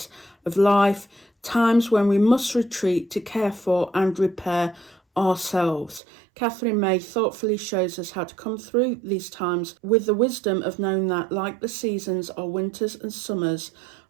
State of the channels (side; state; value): left; drops out; at 6.0 s